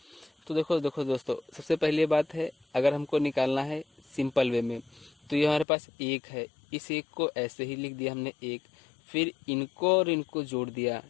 तो देखो दोस्तों, सबसे पहली बात है, अगर हमको निकालना है सिंपल वे में, तो ये हमारे पास 1 है। इस 1 को ऐसे ही लिख दिया हमने 1, फिर इनको और इनको जोड़ दिया,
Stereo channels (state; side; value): drops out; right; at 5.7 s